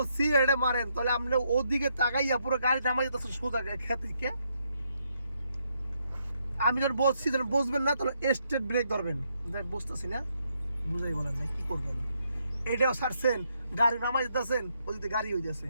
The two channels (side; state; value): both; inverted; correlation -0.76